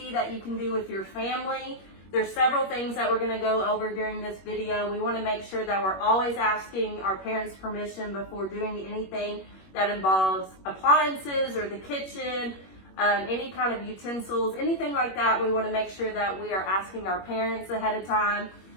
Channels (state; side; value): late; right; 21 ms